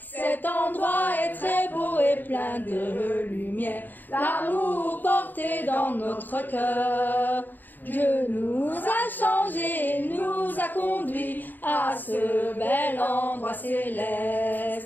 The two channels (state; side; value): late; right; 0.089 ms